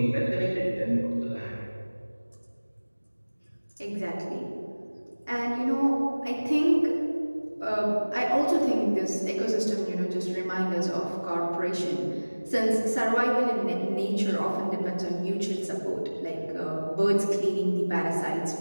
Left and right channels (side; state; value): both; inverted; correlation -1.00